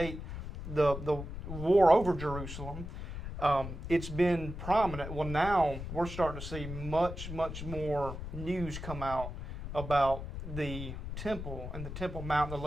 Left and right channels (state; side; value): noise; left; rumble, 8 dB below the sound